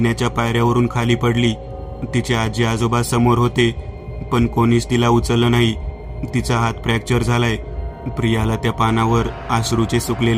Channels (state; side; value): identical; both; correlation 1.00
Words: पायऱ्यावरून खाली पडली. तिचे आजी आजोबा समोर होते, पण कोणीच तिला उचललं नाही. तिचा हात फ्रॅक्चर झालाय. प्रियाला त्या पानावर अश्रूचे